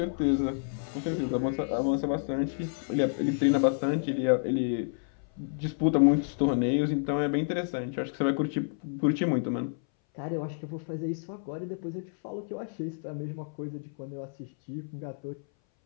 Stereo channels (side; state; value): right; silent; 58 dB below the other